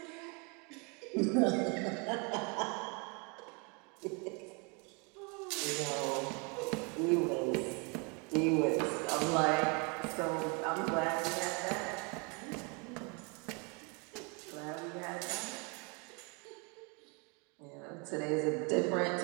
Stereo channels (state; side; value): quieter; left; 32.0 dB